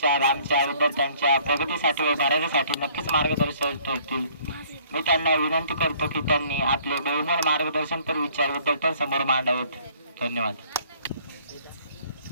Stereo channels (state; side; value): inverted; both; correlation -0.58